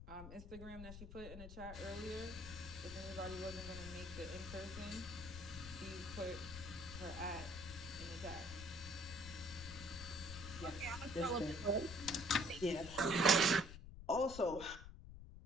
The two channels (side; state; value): left; noise; rumble, 11 dB below the sound